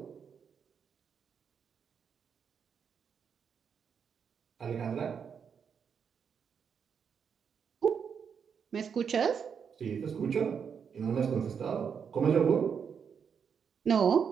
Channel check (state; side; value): quieter; left; 6.9 dB